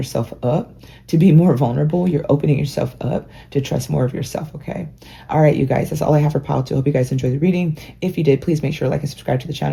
up to be more vulnerable. You're opening yourself up to trust more of yourself, okay? All right, you guys, that's all I have for pile 2. I hope you guys enjoyed the reading. If you did, please make sure to like and subscribe to the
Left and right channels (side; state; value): both; identical; correlation 1.00